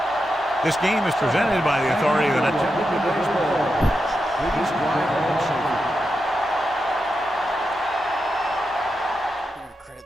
This game is presented by the authority of the net. I'm going to credit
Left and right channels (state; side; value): normal; both; correlation 0.88